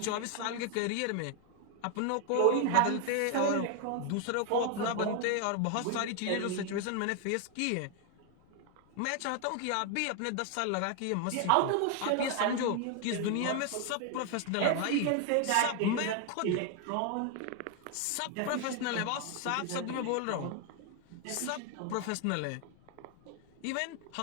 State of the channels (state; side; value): different; both; correlation 0.01